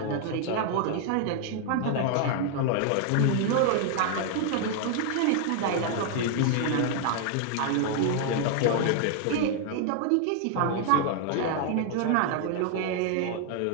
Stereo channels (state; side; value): different; both; correlation 0.00